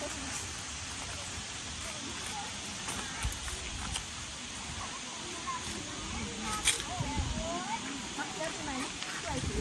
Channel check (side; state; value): both; identical; correlation 1.00